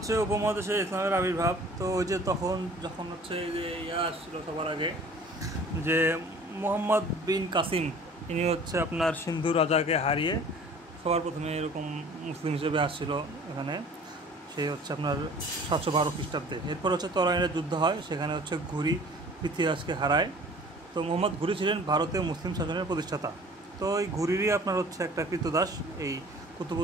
উপমহাদেশে ইসলামের আবির্ভাব। তো ওই যে যখন হচ্ছে এই যে আসছিল সবার আগে যে মোহাম্মদ বিন কাসিম, ইনি হচ্ছে আপনার সিন্ধু রাজাকে হারিয়ে সবার প্রথমে এরকম মুসলিম হিসেবে আসছিল এখানে। সে হচ্ছে আপনার 712 খ্রিস্টাব্দে। এরপর হচ্ছে তরাইনের যুদ্ধ হয়, সেখানে হচ্ছে ঘুরি পৃথ্বীরাজকে হারায়। তো মোহাম্মদ ঘুরি ছিলেন ভারতীয় মুসলিম শাসনের প্রতিষ্ঠাতা। তো এই ঘুরিরই আপনার হচ্ছে একটা কৃতদাস এই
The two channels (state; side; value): normal; both; correlation 0.48